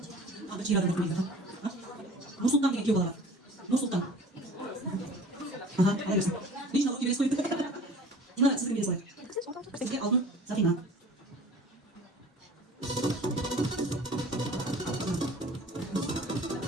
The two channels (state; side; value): normal; both; correlation 0.45